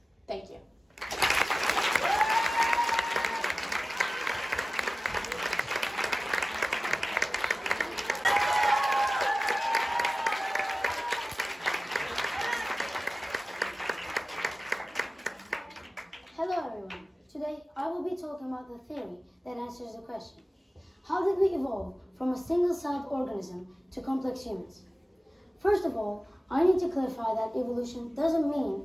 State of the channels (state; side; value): normal; both; correlation 0.97